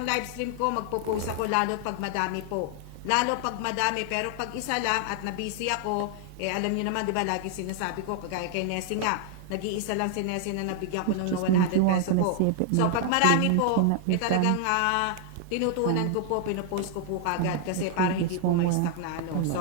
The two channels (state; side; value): different; both; correlation 0.00